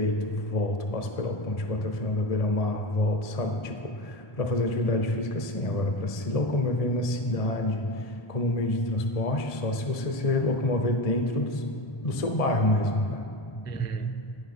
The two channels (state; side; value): late; right; 1.7 ms